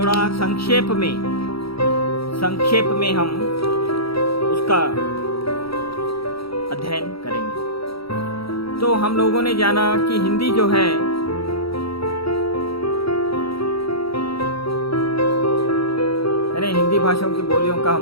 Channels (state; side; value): late; right; 0.75 ms